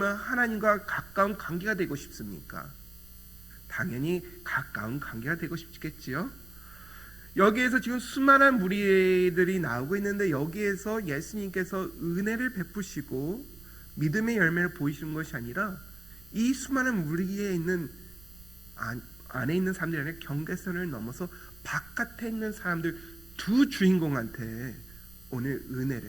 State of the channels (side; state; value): right; noise; rumble, 22 dB below the sound